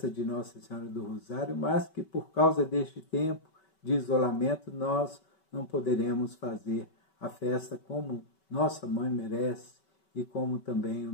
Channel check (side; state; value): right; late; 5.2 ms